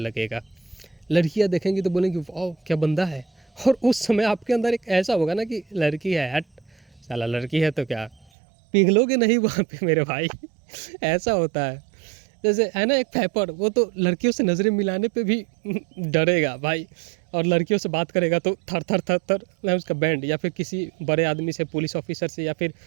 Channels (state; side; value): drops out; left; at 8.2 s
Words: लड़कियां देखेंगी तो बोलेंगी वाह क्या बंदा है, और उस समय आपके अंदर एक ऐसा होगा ना कि लड़की है, हट साला लड़की है तो क्या, पिघलोगे नहीं वहाँ पे मेरे भाई। ऐसा होता है। जैसे है ना एक फैपर, वो तो लड़कियों से नज़रें मिलाने पे भी डरेगा भाई, और लड़कियों से बात करेगा तो थर थर थर थर ना उसका बैंड, या फिर किसी बड़े आदमी से, पुलिस ऑफिसर से, या फिर